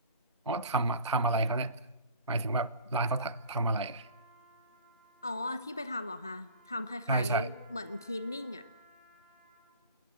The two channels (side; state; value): both; inverted; correlation -0.44